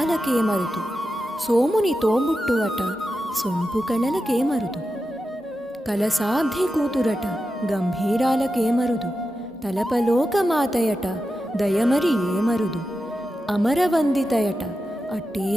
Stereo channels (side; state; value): both; normal; correlation 0.90